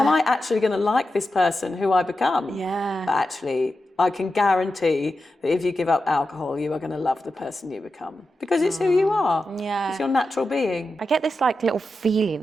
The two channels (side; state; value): both; normal; correlation 0.90